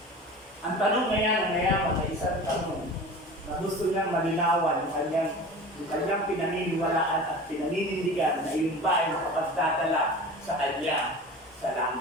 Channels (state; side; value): normal; both; correlation 0.36